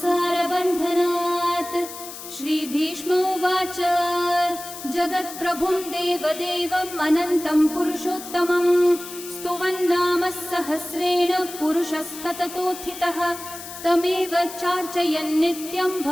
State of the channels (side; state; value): left; noise; hiss, 12 dB below the sound